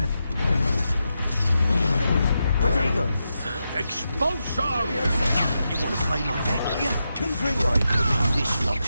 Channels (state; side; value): inverted; both; correlation -0.87